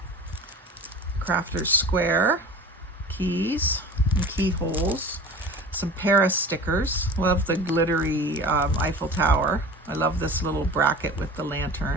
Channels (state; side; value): normal; both; correlation 0.38